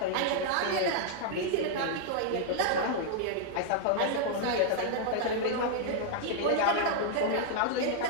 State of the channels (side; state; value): both; different; correlation -0.01